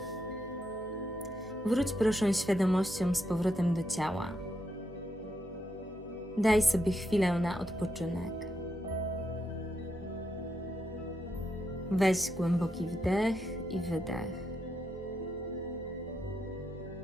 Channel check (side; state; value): both; normal; correlation 0.82